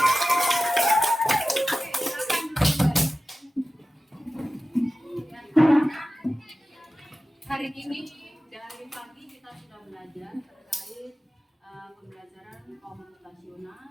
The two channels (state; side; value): normal; both; correlation 0.96